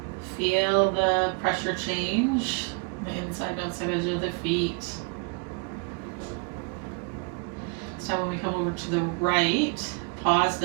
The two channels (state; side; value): quieter; left; 31.6 dB